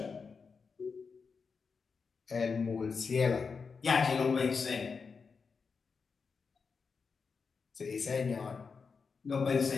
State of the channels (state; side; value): quieter; right; 5.2 dB